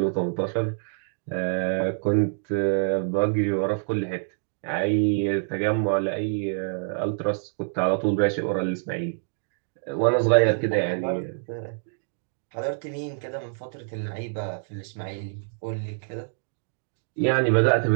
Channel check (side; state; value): left; silent; digital silence